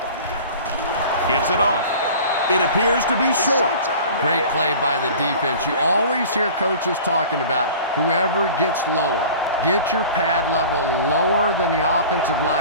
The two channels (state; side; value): inverted; both; correlation -0.41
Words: Gets it off. It appears to be short. Great play by the defense. You always hear coaches talking about whoever gets lower, Get your pad level lower than the offensive